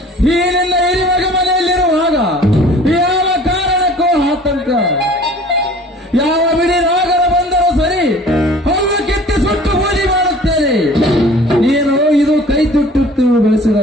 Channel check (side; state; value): both; normal; correlation 0.48